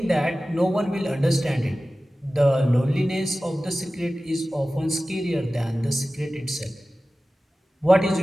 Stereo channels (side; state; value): both; normal; correlation 0.96